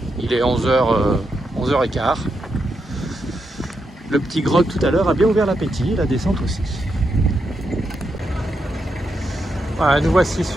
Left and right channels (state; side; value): normal; both; correlation 0.83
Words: Il est 11h15. Le petit grog tout à l'heure a bien ouvert l'appétit, la descente aussi. Voilà, nous voici